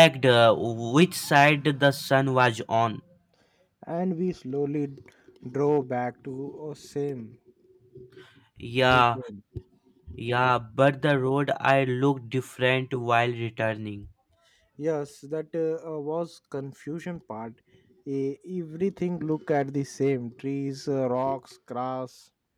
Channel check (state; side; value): identical; both; correlation 1.00